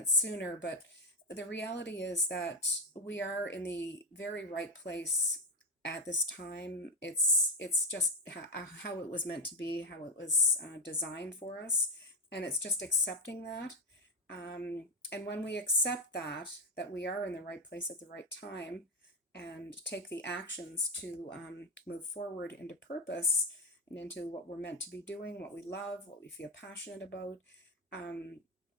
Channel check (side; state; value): both; normal; correlation 0.09